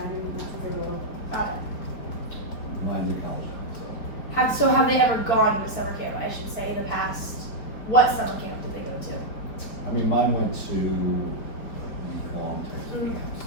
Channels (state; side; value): late; right; 4.8 ms